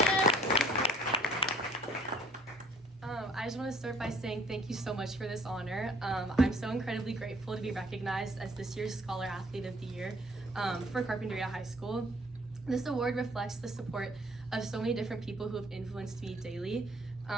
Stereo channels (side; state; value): both; normal; correlation 0.57